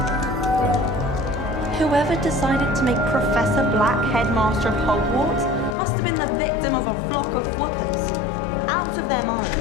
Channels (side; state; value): right; drops out; at 5.8 s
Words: Whoever decided to make Professor Black headmaster of Hogwarts must have been the victim of a flock of whoopers. Out of their mind.